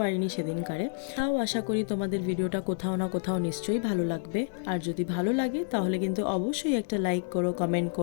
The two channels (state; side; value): silent; right; 58 dB below the other